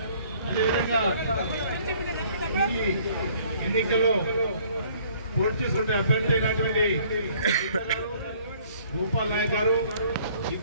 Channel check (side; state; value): both; inverted; correlation -0.58